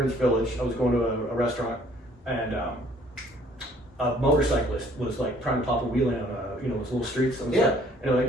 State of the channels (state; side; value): normal; both; correlation 0.59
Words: Village. I was going to a restaurant, and a motorcyclist was like trying to pop a wheelie on those little streets. And